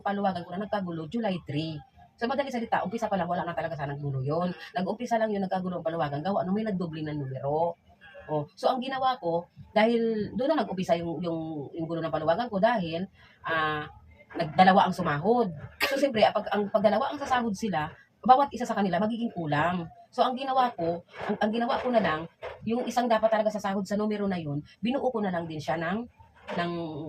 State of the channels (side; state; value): both; identical; correlation 1.00